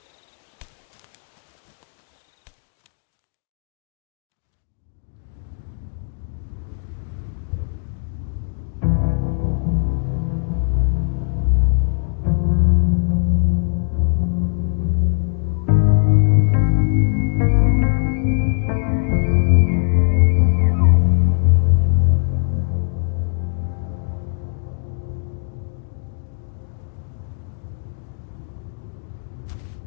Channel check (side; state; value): right; silent; digital silence